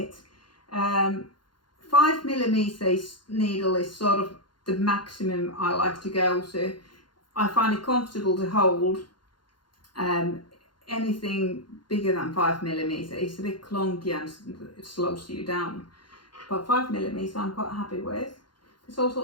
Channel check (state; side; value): late; right; 0.71 ms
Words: 5mm needle is sort of the maximum I like to go to. I find it comfortable to hold. Anything bigger than 5mm is a bit clunky and it slows you down, but 5mm I'm quite happy with. There's